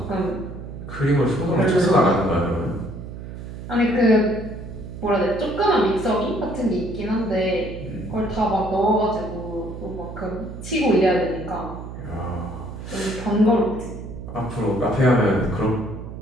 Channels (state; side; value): noise; right; hum, 10 dB below the sound